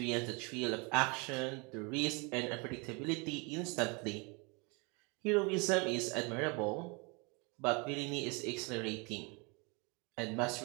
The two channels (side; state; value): left; quieter; 30.3 dB